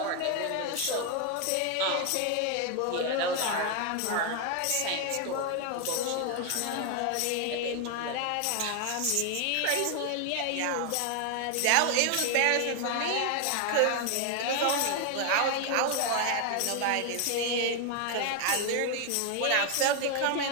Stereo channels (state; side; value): different; both; correlation 0.01